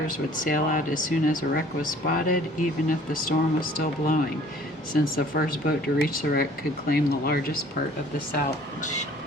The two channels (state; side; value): normal; both; correlation 0.54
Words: would sail out as soon as a wreck was spotted, even if the storm was still blowing, since the first boat to reach the wreck could claim the largest part of the salvage.